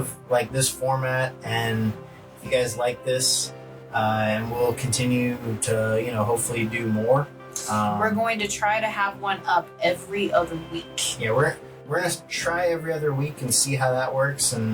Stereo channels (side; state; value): both; identical; correlation 1.00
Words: this format, and if you guys like this, and we'll continue to, hopefully do more. We're going to try to have one up every other week. Yeah, we're going to try every other week and see how that works,